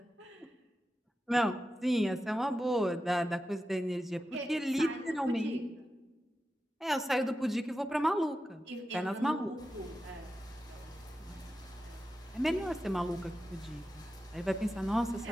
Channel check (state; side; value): normal; both; correlation 0.91